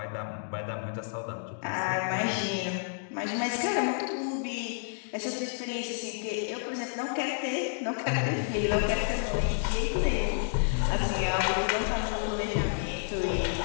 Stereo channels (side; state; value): right; silent; digital silence